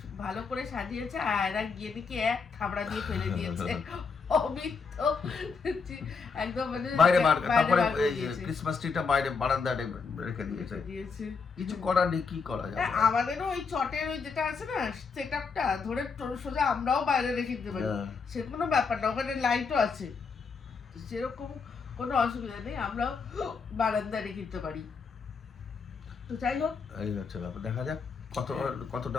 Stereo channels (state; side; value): quieter; right; 5.2 dB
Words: ভালো করে সাজিয়েছে, আর আয়রা গিয়ে দেখি এক থাবড়া দিয়ে ফেলে দিয়েছে। অমিত তো একদম মানে বাইরে তারপরে বার করে এই দিয়েছে। ক্রিসমাস ট্রিটা বাইরে বারান্দায় রেখে দিয়েছে। কিছু করার নেই, কি করা যাবে। আমাদেরও ওই চটের ওই যেটা আছে না সেটআপটা ধরে সোজা আমরাও বাইরে রেখে দিতে পারি, হ্যাঁ। সে কোনো ব্যাপার না, ওখানে লাইটও আছে, সেরকম কোনো অসুবিধা নেই, আমরাও বারান্দায় রেখে দিতে পারি। তো যাই হোক, এই হচ্ছে ব্যাপার, দেখা যাক কতটা